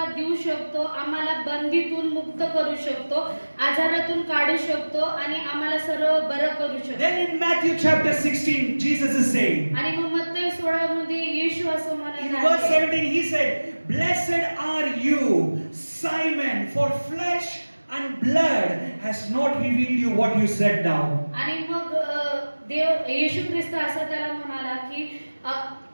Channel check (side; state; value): both; inverted; correlation -1.00